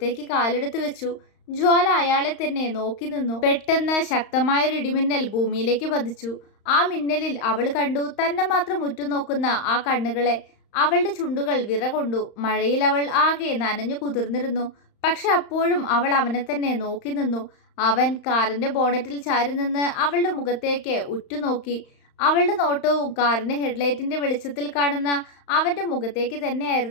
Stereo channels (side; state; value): right; late; 35 ms